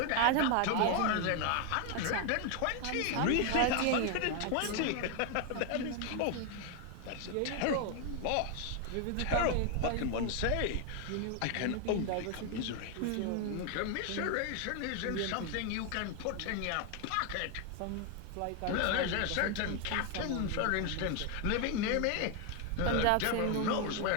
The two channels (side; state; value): both; different; correlation 0.01